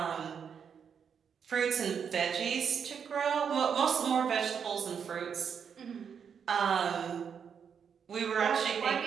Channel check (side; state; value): left; quieter; 7.1 dB